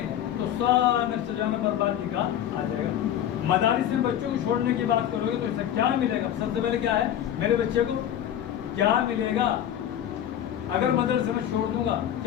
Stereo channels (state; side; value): quieter; right; 10.8 dB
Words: تو سارا سجانا بربادی کا آ جائے گا. مدارس میں بچوں کو چھوڑنے کی بات کرو گے تو اس سے کیا ملے گا؟ سب سے پہلے کیا ہے؟ میرے بچے کو کیا ملے گا؟ اگر مدرسے میں چھوڑ دوں گا